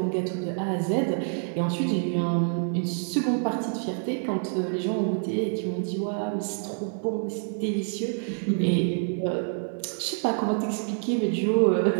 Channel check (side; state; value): left; silent; 58 dB below the other